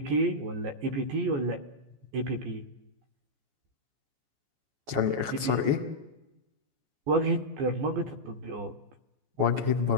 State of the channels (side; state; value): left; late; 14 ms